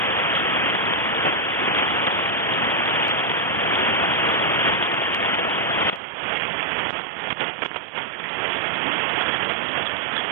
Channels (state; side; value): drops out; left; at 6.0 s